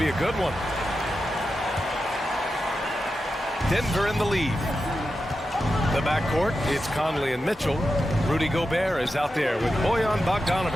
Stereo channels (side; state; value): both; normal; correlation 0.90